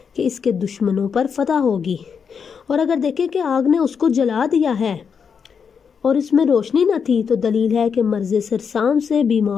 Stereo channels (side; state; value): right; quieter; 6.5 dB